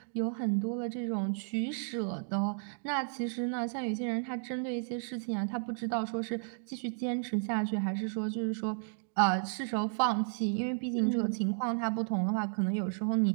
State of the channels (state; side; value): silent; left; digital silence